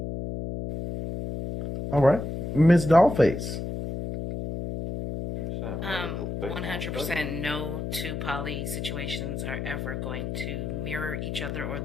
All right, Miss Dollface. 100% 100% no two poly situations are ever going to mirror each other or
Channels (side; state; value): left; noise; hum, 4 dB below the sound